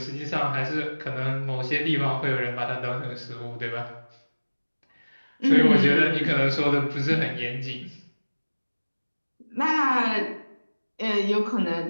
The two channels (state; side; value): inverted; both; correlation -1.00